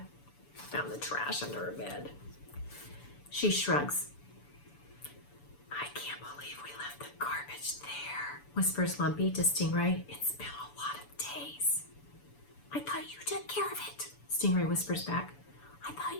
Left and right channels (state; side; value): late; right; 6.9 ms